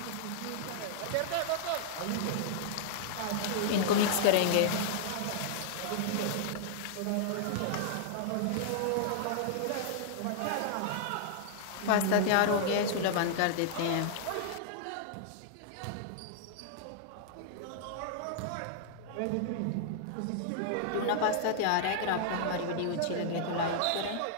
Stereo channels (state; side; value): different; both; correlation -0.01